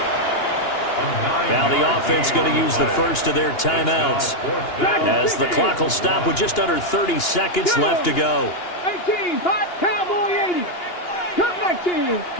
Now the offense going to use the first of their timeouts as the clock will stop with just under 30 seconds left to go. 18, Cowboy 80. Come 19,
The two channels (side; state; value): right; late; 2.8 ms